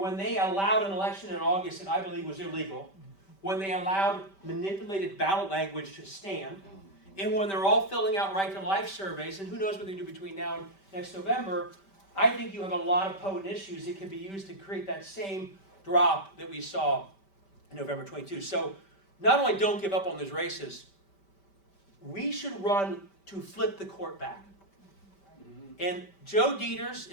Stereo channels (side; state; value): right; late; 5.1 ms